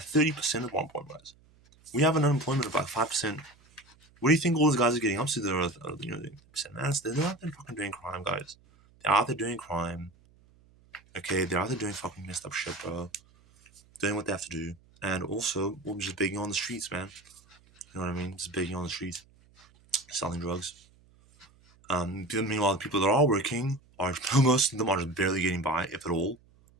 at one point, guys. We have an unemployment of like 5%. What do you think all those guys are getting up to? They're 30%, man. They're out there fucking doing crime, guys. They're out there doing crime. Okay, they're out there doing fucking messed up shit, bro. Doing what they have to do, and also we're just begging on the streets, man. You know what I mean? Just begging on the streets, selling drugs. Meanwhile, the people that are working are most of them are just barely getting by, if at all.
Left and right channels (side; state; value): right; noise; hum, 29 dB below the sound